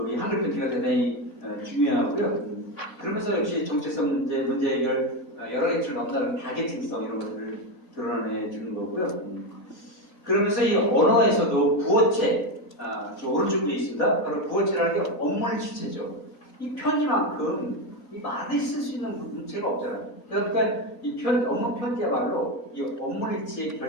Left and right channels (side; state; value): both; normal; correlation 0.13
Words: 이 한글 편지가 대단히 중요하고요. 그러면서 역시 정체성 문제 해결 여러 가지를 넘나드는 다계층성 이런 것들을 드러내 주는 거고요. 그러면서 이 언어에서도 부어체, 저 오른쪽에 있습니다. 바로 부어체라는 게 업무의 주체죠. 이 편지만큼 이 말을 쓸 수 있는 문체가 없잖아요. 그러니까 이 업무 편지야말로 이 업무의 주체의